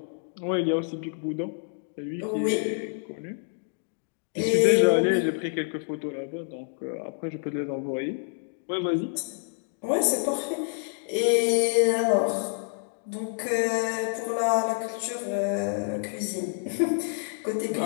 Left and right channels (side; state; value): right; silent; digital silence